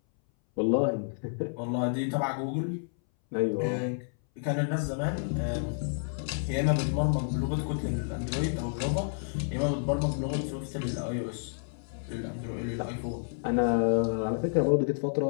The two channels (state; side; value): silent; right; 58 dB below the other